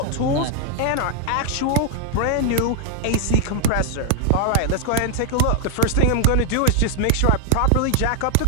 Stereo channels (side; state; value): both; different; correlation 0.00